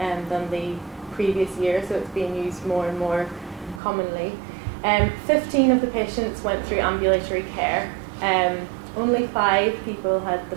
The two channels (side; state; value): left; drops out; at 3.8 s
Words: than the previous year, so it's being used more and more commonly. 15 of the patients went through ambulatory care. Only 5 people had the